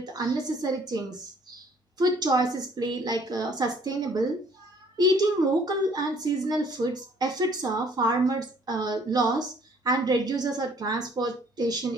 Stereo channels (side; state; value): both; normal; correlation 0.59